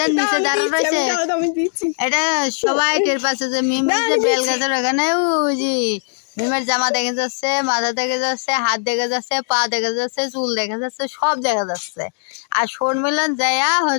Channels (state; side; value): silent; right; digital silence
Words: নিচে দাঁড়া রয়েছে এটা সবাই টের পাচ্ছে যে মিম যে বেল গাছের ওখানে। ওই যে মিমের জামা দেখা যাচ্ছে, মাথা দেখা যাচ্ছে, হাত দেখা যাচ্ছে, পা দেখা যাচ্ছে, চুল দেখা যাচ্ছে, সব দেখা যাচ্ছে। আর শর্মিলন যাইয়া